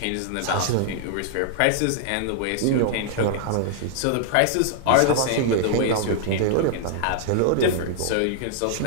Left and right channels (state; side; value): different; both; correlation -0.01